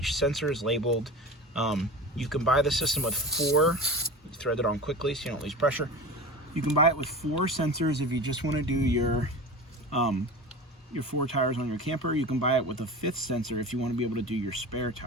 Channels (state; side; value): normal; both; correlation 0.32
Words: sensor is labeled. You can buy the system with 4. You thread it on quickly so you don't lose pressure. You can buy it with 4 sensors if you just want to do your 4 tires on your camper. You can buy it with a 5th sensor if you want to be able to do your spare